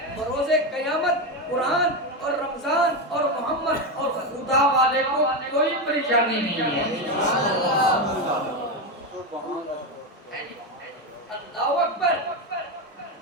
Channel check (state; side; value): normal; both; correlation 0.12